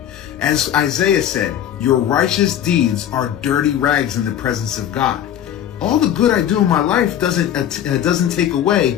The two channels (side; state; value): right; quieter; 10.5 dB